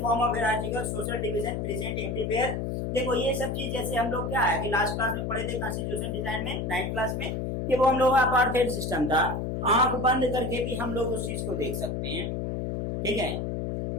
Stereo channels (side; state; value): left; noise; hum, 2 dB below the sound